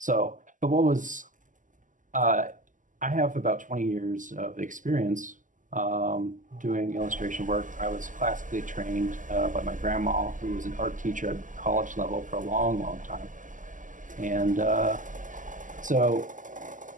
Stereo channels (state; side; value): late; left; 0.38 ms